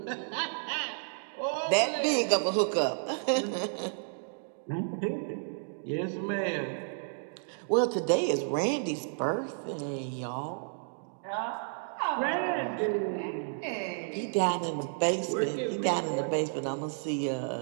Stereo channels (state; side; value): silent; left; digital silence